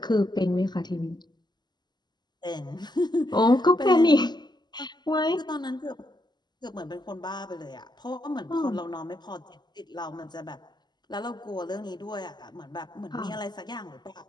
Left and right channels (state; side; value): late; right; 0.21 ms